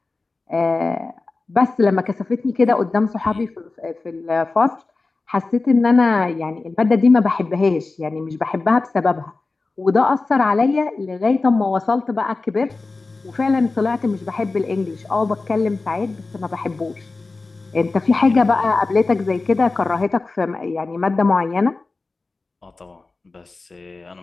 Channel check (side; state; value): right; quieter; 3.7 dB